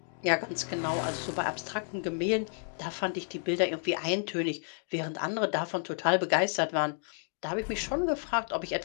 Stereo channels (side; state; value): right; silent; 57 dB below the other